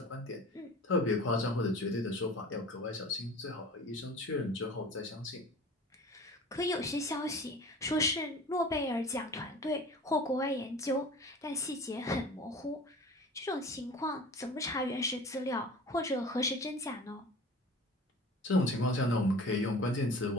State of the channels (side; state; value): both; normal; correlation 0.40